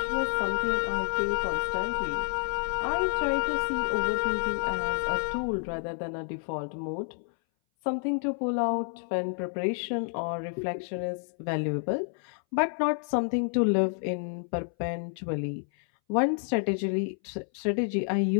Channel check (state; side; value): silent; right; 58 dB below the other